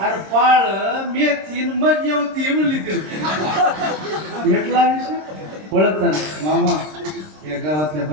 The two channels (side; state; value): left; late; 26 ms